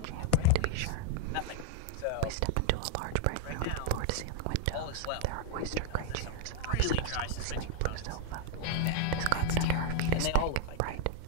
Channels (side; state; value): both; different; correlation 0.00